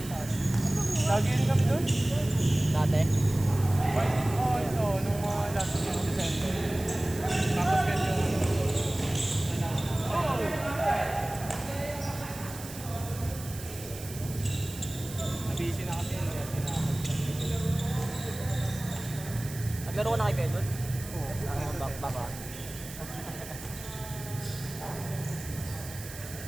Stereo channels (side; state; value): right; noise; hiss, 13 dB below the sound